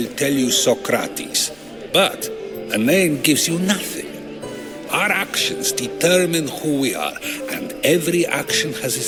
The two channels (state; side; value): noise; right; rumble, 28 dB below the sound